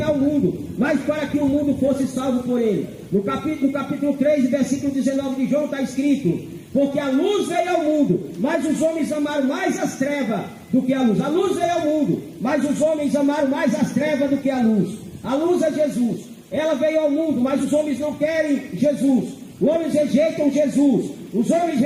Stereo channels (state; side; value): identical; both; correlation 1.00